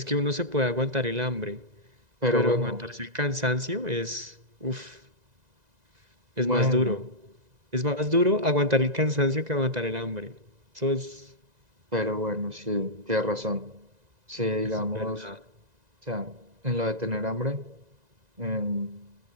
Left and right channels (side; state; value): left; late; 2.0 ms